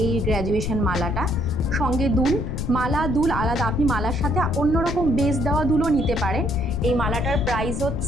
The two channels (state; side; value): noise; left; rumble, 3 dB below the sound